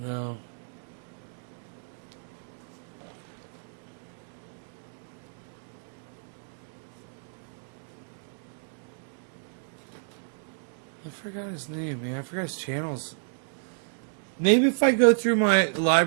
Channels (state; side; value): silent; left; digital silence